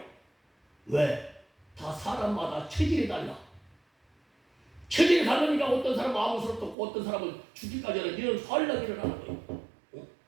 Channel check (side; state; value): left; drops out; at 6.8 s